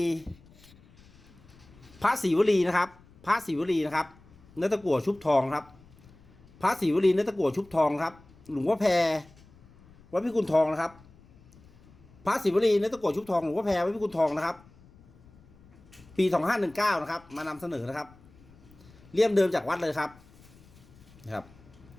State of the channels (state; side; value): noise; left; rumble, 26 dB below the sound